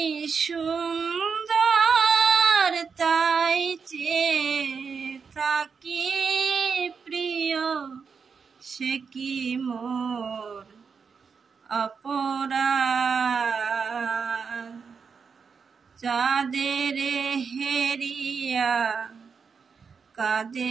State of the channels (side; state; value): left; quieter; 5.8 dB